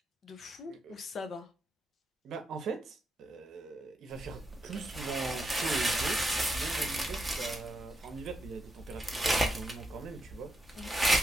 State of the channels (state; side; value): normal; both; correlation 0.83